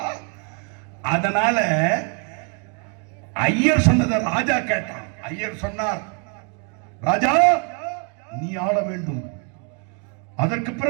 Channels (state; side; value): quieter; left; 38.9 dB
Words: அதனால ஐயர் சொன்னதை ராஜா கேட்டான். ஐயர் சொன்னார், ராஜா நீ ஆள வேண்டும். அதற்கு